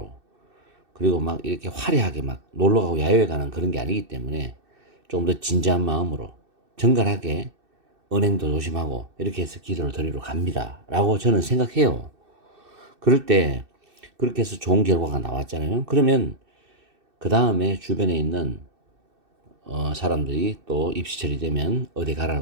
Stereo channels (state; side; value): late; left; 2.6 ms